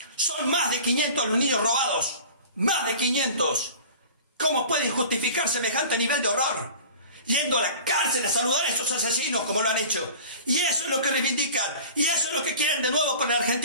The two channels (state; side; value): inverted; both; correlation -0.40